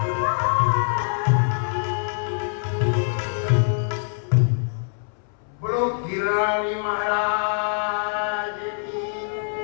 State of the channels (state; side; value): silent; right; 63 dB below the other